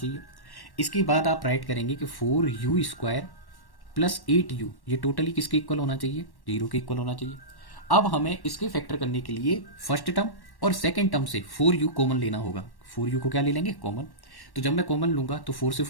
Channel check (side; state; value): right; late; 1.1 ms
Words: इसके बाद आप राइट करेंगे कि 4u² प्लस 8u, ये टोटली किसके इक्वल होना चाहिए? 0 के इक्वल होना चाहिए। अब हमें इसके फैक्टर करने के लिए फर्स्ट टर्म और सेकेंड टर्म से 4u कॉमन लेना होगा। 4u को क्या ले लेंगे? कॉमन। तो जब मैं कॉमन लूंगा तो 4 से